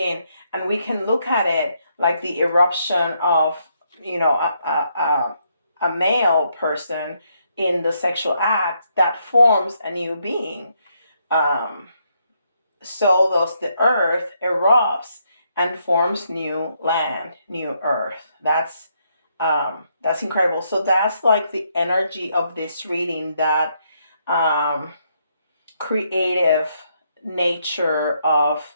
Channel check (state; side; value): inverted; both; correlation -0.76